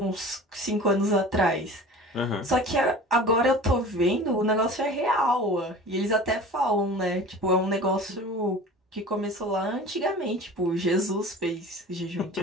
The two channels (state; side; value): normal; both; correlation 0.40